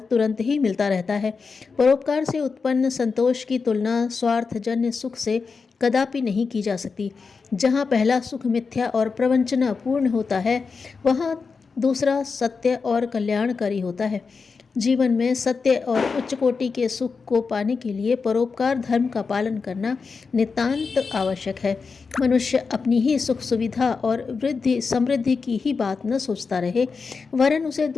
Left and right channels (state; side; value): quieter; right; 4.9 dB